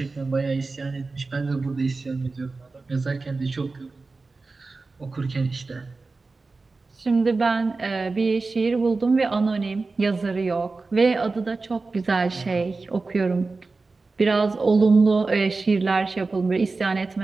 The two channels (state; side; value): quieter; left; 3.8 dB